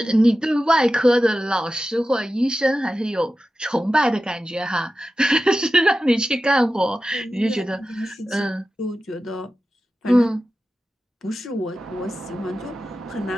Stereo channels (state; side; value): normal; both; correlation 0.93